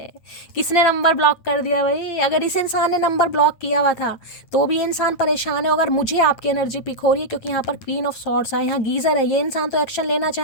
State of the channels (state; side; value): late; right; 9.0 ms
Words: किसने नंबर ब्लॉक कर दिया भाई? अगर इस इंसान ने नंबर ब्लॉक किया हुआ था तो भी ये इंसान परेशान है। अगर मुझे आपकी एनर्जी पिक हो रही है, क्योंकि यहाँ पर क्वीन ऑफ सॉर्ड्स है, यहाँ गीजर है, ये इंसान तो एक्शन लेना